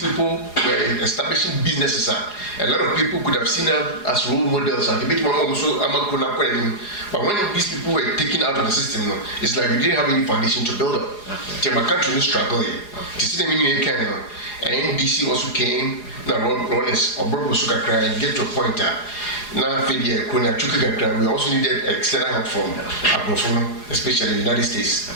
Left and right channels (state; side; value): late; right; 4.8 ms